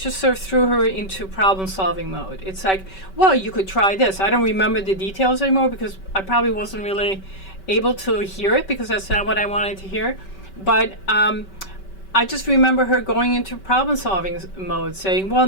sort of threw her into problem-solving mode. It's like, well, you could try this. I don't remember the details anymore, because I probably wasn't really able to hear it, because that's not what I wanted to hear. But I just remember her going into problem-solving mode, saying, well,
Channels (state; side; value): late; right; 5.2 ms